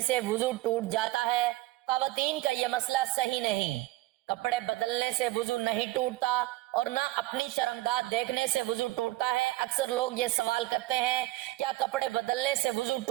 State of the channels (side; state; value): left; quieter; 18.1 dB